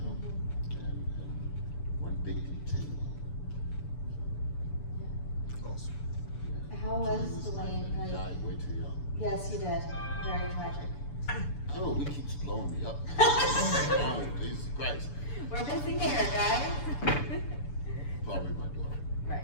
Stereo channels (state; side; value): late; right; 6.9 ms